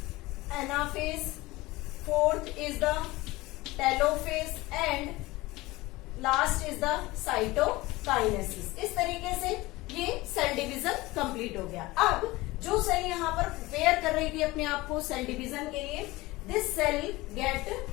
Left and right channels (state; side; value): quieter; right; 20.3 dB